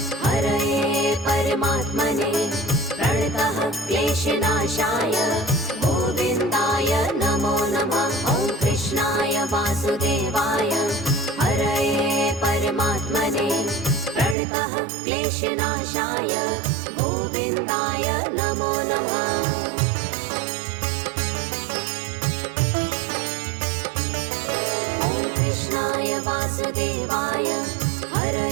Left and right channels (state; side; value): drops out; left; at 14.4 s